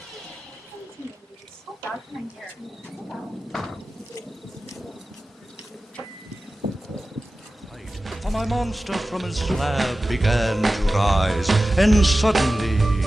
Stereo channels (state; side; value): normal; both; correlation 0.95